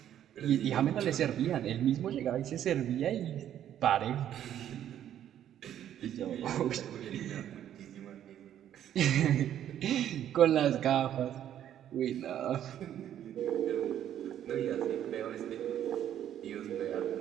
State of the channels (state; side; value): quieter; left; 10.8 dB